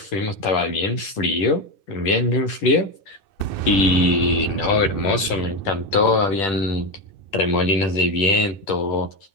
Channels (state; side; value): late; right; 10 ms